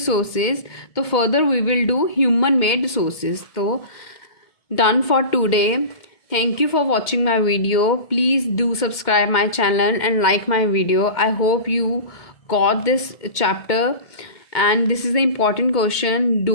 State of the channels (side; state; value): right; late; 2.1 ms